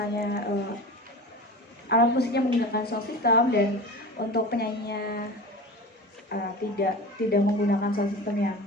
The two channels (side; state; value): both; normal; correlation 0.32